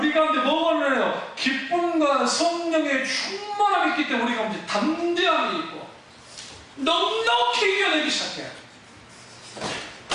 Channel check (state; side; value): identical; both; correlation 1.00